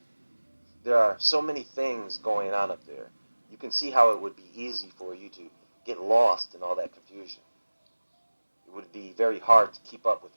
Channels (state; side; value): inverted; both; correlation -1.00